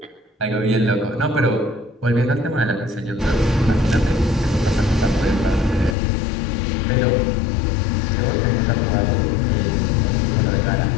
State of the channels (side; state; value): right; drops out; at 6.0 s